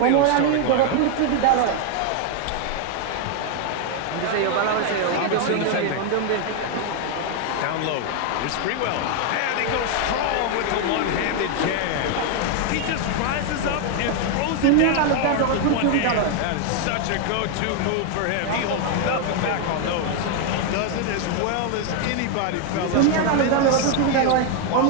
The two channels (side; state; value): both; different; correlation 0.01